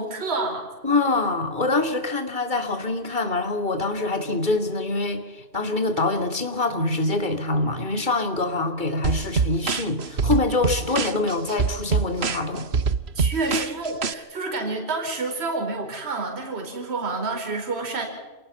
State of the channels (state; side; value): late; left; 2.3 ms